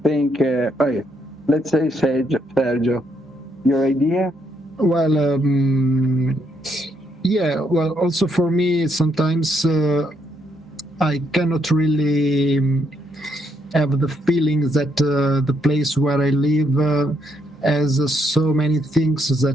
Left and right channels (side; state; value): both; normal; correlation 0.75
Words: let's say Sergio, your idea? Well, yeah. Well, also for me, sometimes I cannot really have the feeling that the place where I live has so many things